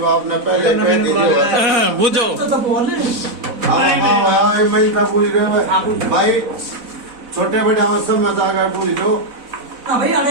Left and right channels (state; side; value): late; left; 4.0 ms